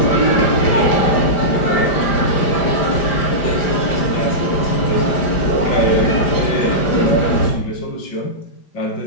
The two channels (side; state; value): right; late; 5.0 ms